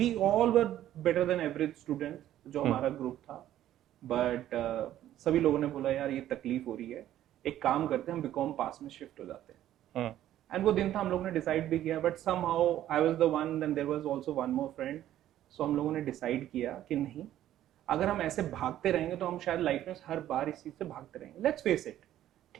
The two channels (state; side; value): quieter; left; 12.5 dB